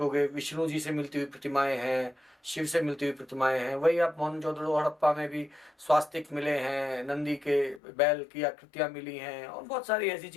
विष्णु जी से मिलती हुई प्रतिमाएं हैं, शिव से मिलती हुई प्रतिमाएं हैं। वही आप मोहनजोदड़ो, हड़प्पा में भी स्वास्तिक मिले हैं, नंदी के बैल की आकृतियाँ मिली हैं, और बहुत सारी ऐसी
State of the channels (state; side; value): drops out; right; at 7.8 s